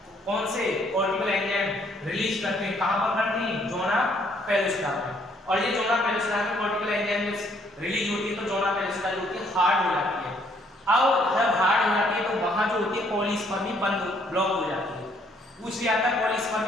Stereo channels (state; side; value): normal; both; correlation 0.66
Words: कौन से कॉर्टिकल एंजाइम रिलीज करते हैं, कहां पर करते हैं? जोना पेलुसिडा में। और ये जोना पेलुसिडा में कॉर्टिकल एंजाइम रिलीज होती है तो जोना पेलुसिडा जो होती है हार्ड हो जाती है। अब जब हार्ड हो जाती है तो वहां जो होती है पॉलीस्पर्मी बंद, ब्लॉक हो जाती है। पूछ लिया था